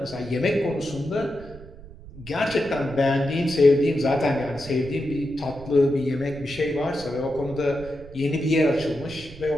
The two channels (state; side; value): noise; right; rumble, 17 dB below the sound